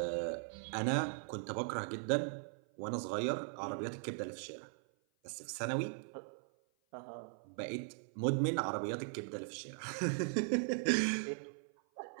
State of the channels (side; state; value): left; silent; 52 dB below the other